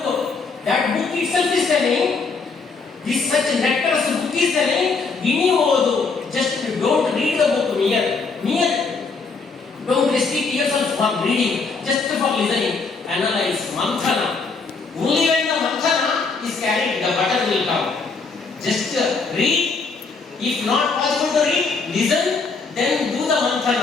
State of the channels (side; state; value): right; quieter; 4.5 dB